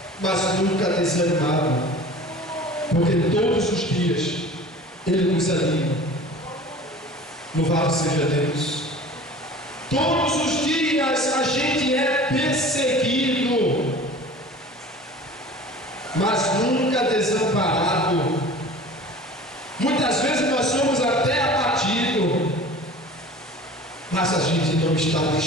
mas nunca desanimados, porque todos os dias ele nos anima. Louvado seja Deus. Todos os dias a gente é perseguido, mas nunca desamparado. Muitas vezes nós somos até abatidos, mas a gente não está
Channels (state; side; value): normal; both; correlation 0.41